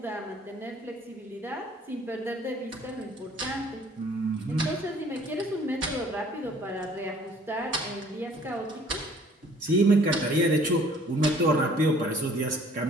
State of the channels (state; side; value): normal; both; correlation 0.55